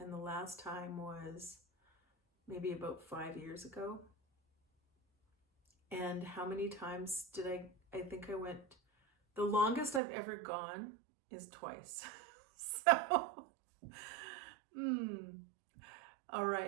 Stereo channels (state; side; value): drops out; left; at 10.0 s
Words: the last time was maybe about 5 years ago. And how many times did I think I went, the longest I've ever gone is twice. So, all